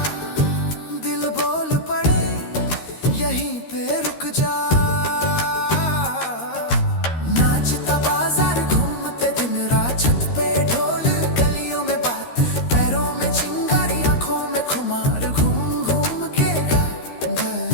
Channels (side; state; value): right; late; 13 ms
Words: दिल बोल पड़े यहीं पे रुक जा। नाचता बाजार घूमते दिन रात, छत पे ढोल गलियों में बात, पैरों में चिंगारी आंखों में खुमार, घूम घूम के